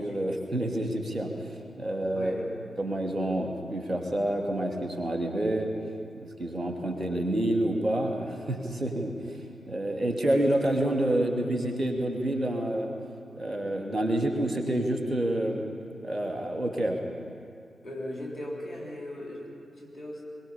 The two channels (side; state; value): both; normal; correlation 0.87